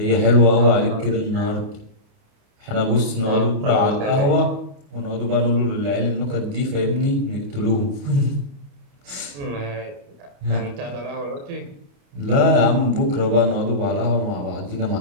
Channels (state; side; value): late; left; 28 ms